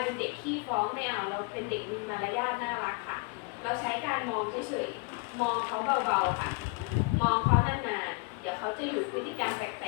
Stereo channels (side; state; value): right; quieter; 30.1 dB